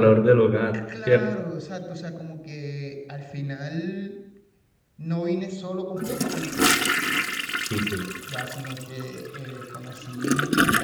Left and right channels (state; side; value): identical; both; correlation 1.00